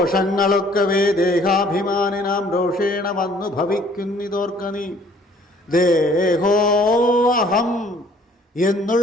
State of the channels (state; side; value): normal; both; correlation 0.58